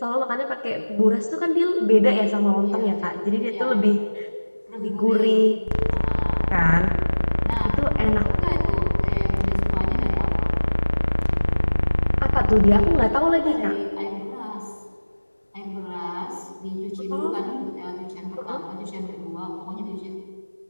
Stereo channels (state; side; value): inverted; both; correlation -1.00